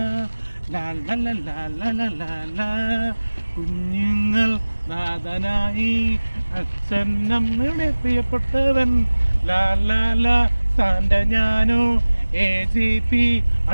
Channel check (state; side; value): inverted; both; correlation -1.00